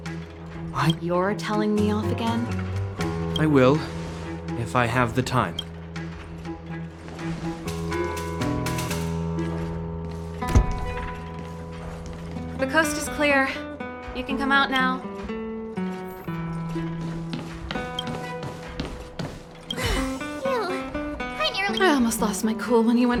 You're telling me off again? I will, if I have the time. The coast is clear. You can come out now. I almost lost my cool when he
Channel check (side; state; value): both; identical; correlation 1.00